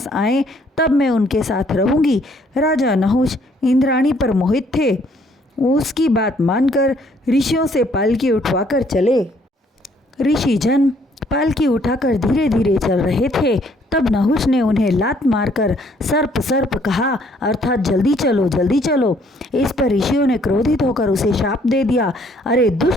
आए, तब मैं उनके साथ रहूंगी। राजा नहुष इंद्राणी पर मोहित थे। उसकी बात मानकर ऋषियों से पालकी उठवाकर चले। ऋषि जन पालकी उठाकर धीरे धीरे चल रहे थे। तब नहुष ने उन्हें लात मारकर सर्प सर्प कहा, अर्थात जल्दी चलो जल्दी चलो। इस पर ऋषियों ने क्रोधित होकर उसे शाप दे दिया, अरे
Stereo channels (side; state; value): both; normal; correlation 0.64